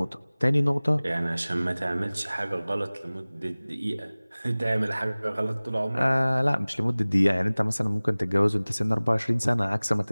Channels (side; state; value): both; inverted; correlation -0.99